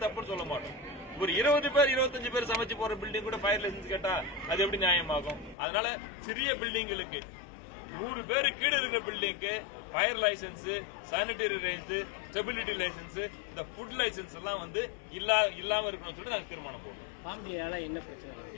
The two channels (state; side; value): drops out; right; at 5.6 s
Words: தப்புன்னு சொல்ல மாட்டோம். ஒரு 20 பேர் 25 பேர் சமைச்சு போற பில்டிங் கூட ஃபயர் லைசன்ஸ் கேட்டா அது எப்படி நியாயமாகும்? அதனால சிறிய பில்டிங்களுக்கு 100 பேரு கீழே இருக்கிற பில்டிங்க்கு fire licence, sanitary licence, stability licence, இந்த ஃபுட் லைசன்ஸ் எல்லாம் இல்லாம இருக்கணும்னு சொல்லி நாங்க தீர்மானம் போடுறோம். ஃபார்ம் டினால என்ன பிரச்சனை?